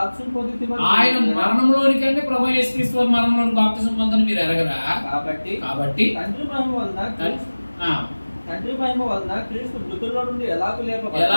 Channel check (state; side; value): inverted; both; correlation -1.00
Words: మరణంలోనికి అంటే ప్రభు యేసుక్రీస్తు వారి మరణంలోనికి బాప్తిసం పొందని మీరు ఎరగరా? కాబట్టి తండ్రి మహిమ వలన క్రీస్తు మృతుల్లో నుండి ఎలాగూ